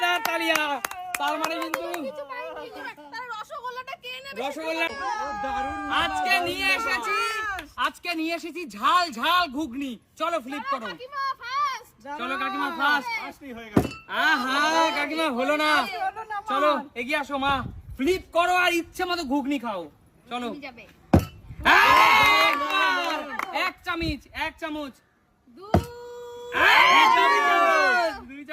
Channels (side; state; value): both; identical; correlation 1.00